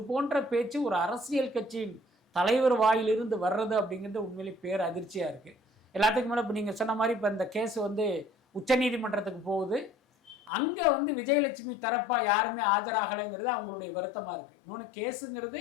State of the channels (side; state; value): right; drops out; at 10.5 s